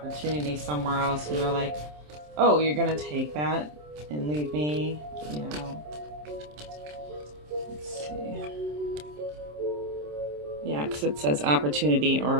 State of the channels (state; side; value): late; left; 27 ms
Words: somewhere else, and you're like, oh, you're gonna take that and leave me, Let's see. Yeah, because it says opportunity